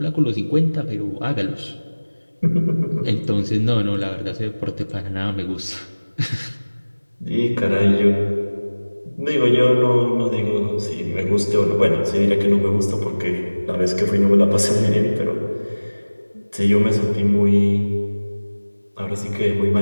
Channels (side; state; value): both; inverted; correlation -1.00